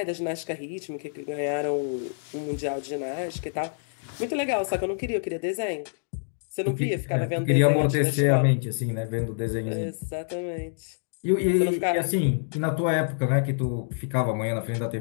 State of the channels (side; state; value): right; silent; digital silence